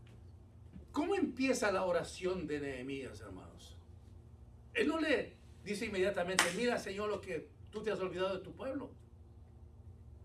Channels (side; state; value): both; identical; correlation 1.00